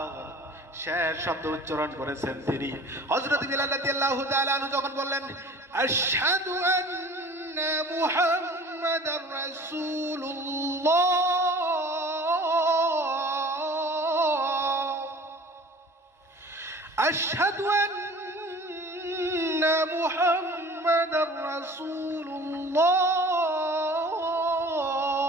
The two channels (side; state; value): both; normal; correlation 0.45